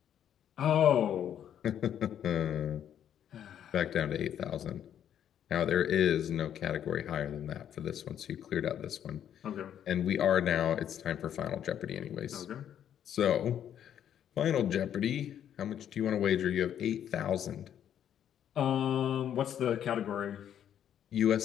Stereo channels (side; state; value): right; quieter; 9.8 dB